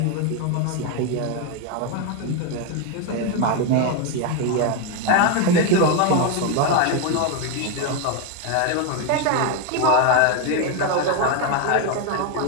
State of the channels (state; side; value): different; both; correlation 0.01